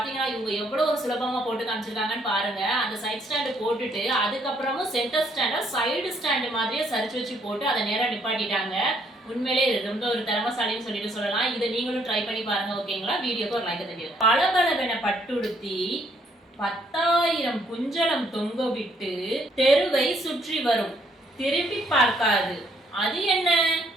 இவங்க எவ்வளவு ஒரு சுலபமா போட்டு காமிச்சிருக்காங்கன்னு பாருங்க. அந்த சைட் ஸ்டாண்ட் போட்டுட்டு அதுக்கப்புறமும் சென்டர் ஸ்டாண்ட சைடு ஸ்டாண்ட் மாதிரியே சரிச்சு வச்சு போட்டு அதை நேரா நிப்பாட்டிட்டாங்க. உண்மையிலே ரொம்ப ஒரு திறமசாலின்னு சொல்லிட்டு சொல்லலாம். இதை நீங்களும் ட்ரை பண்ணி பாருங்க. ஓகேங்களா? வீடியோக்கு ஒரு லைக் தெரியும். பளபளவென பட்டுடுத்தி 10,000 குஞ்சலம் தொங்க விட்டு தெருவை சுற்றி வரும், திரும்பி பார்க்காது. அது என்ன?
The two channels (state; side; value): normal; both; correlation 0.68